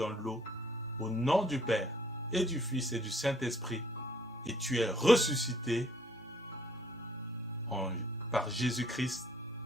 l'eau au nom du Père et du Fils et du Saint-Esprit, et tu es ressuscité par Jésus-Christ,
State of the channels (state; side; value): normal; both; correlation 0.62